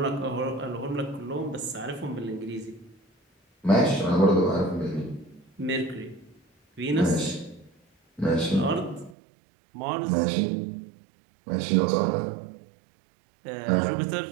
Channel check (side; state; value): left; drops out; at 9.2 s